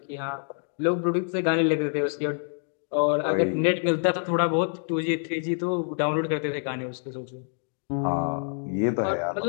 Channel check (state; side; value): silent; right; digital silence